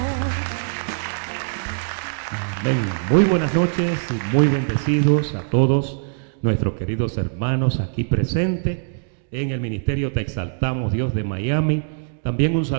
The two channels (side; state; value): left; silent; digital silence